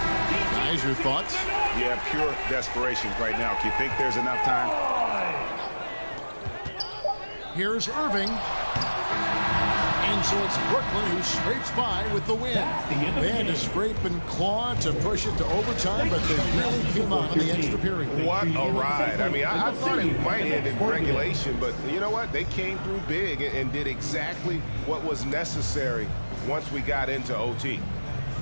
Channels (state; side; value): inverted; both; correlation -1.00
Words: your thoughts? Yeah, pure desperation right now. Do you think there's enough time? Here's Irving. And so it's Brooklyn who scrapes by with the win. They had to scrape and claw to push it to overtime, but they really came out in the extra period. What a ride. I mean, I thought it might end in regulation, but you know what? They came through big and did exactly what was necessary once we got into OT.